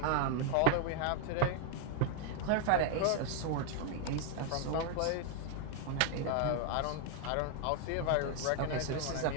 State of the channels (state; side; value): different; both; correlation 0.00